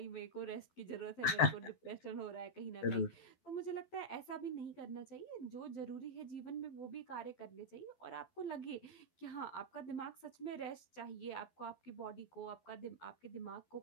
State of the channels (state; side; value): late; right; 12 ms